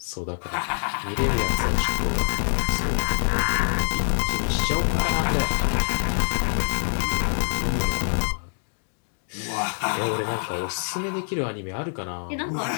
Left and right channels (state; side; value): silent; right; digital silence